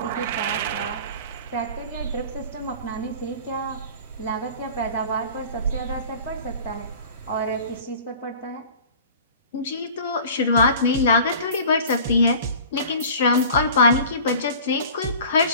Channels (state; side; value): inverted; both; correlation -0.43